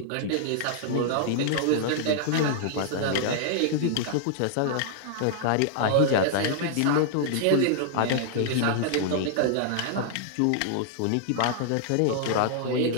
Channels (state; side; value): different; both; correlation -0.01